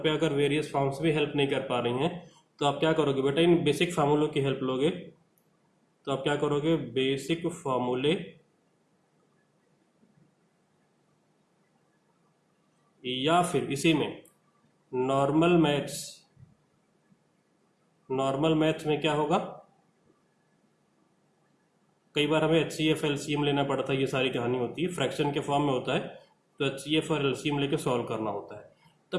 अगर वेरियस फॉर्म्स भी हेल्प नहीं कर पा रही हैं तो आप क्या करोगे बेटा, इन बेसिक फार्मूलों की हेल्प लोगे। तो आप क्या करोगे, बेसिक फॉर्मूले या फिर इसी में नॉर्मल मैथ्स में क्या होगा, कई बार हमें HCF LCM लेना पड़ता है, ये सारी कहानी होती है, फ्रैक्शन के फॉर्म में होता है तो HCF और LCM लेके सॉल्व करना होता है।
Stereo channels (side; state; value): both; identical; correlation 1.00